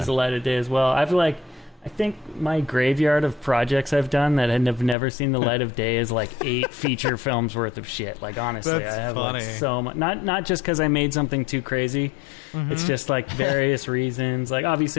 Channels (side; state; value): right; drops out; at 5.0 s